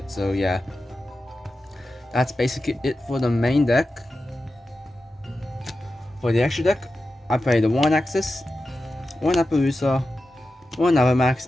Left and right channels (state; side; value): normal; both; correlation 0.92